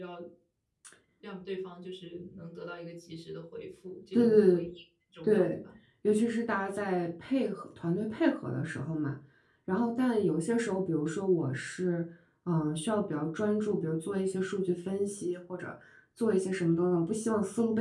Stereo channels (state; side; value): identical; both; correlation 1.00